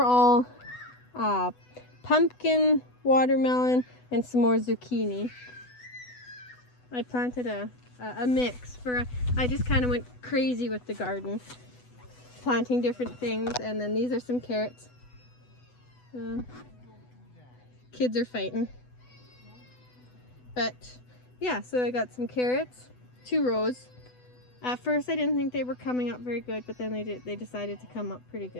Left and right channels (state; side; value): late; right; 8.0 ms